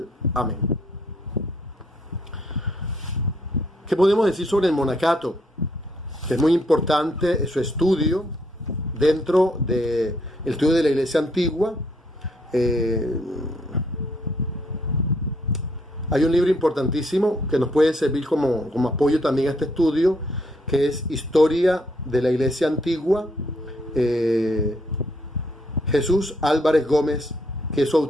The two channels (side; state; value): both; normal; correlation 0.71